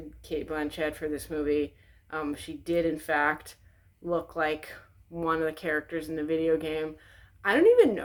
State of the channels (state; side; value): identical; both; correlation 1.00